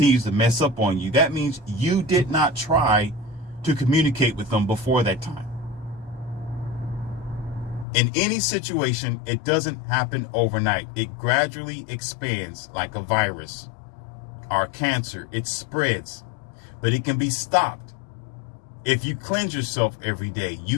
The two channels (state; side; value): drops out; right; at 7.9 s